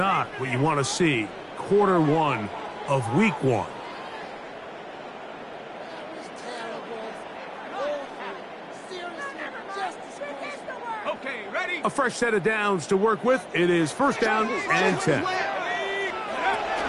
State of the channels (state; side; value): identical; both; correlation 1.00